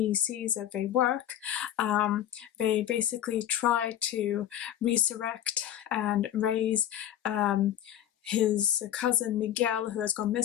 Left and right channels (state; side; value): quieter; right; 11.2 dB